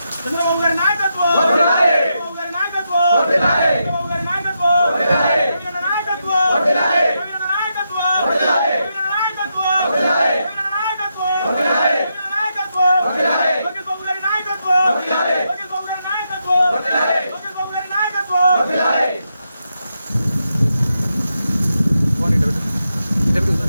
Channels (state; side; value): inverted; both; correlation -0.84